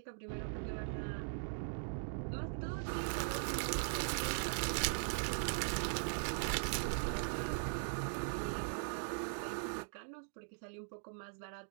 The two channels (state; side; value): silent; left; digital silence